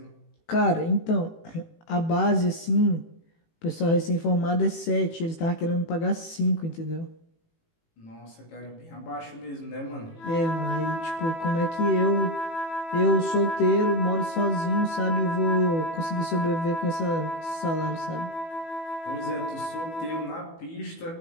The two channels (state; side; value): late; right; 18 ms